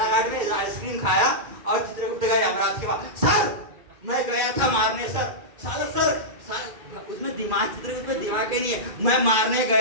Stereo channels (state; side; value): late; left; 2.2 ms